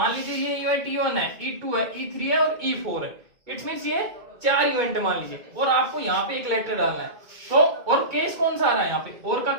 लीजिए ये इवेंट E1 है, E2 है, E3 है और E4 है, इट्स मीन्स ये 4 इवेंट मान लीजिए और आपको यहाँ पे एक लेटर डालना है, तो और केस कौन सा आ रहा है यहाँ पे, और का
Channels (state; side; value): late; left; 2.2 ms